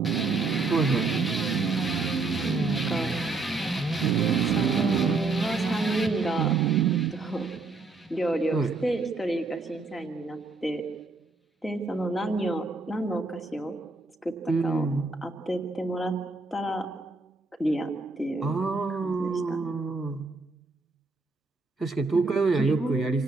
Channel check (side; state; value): left; quieter; 3.7 dB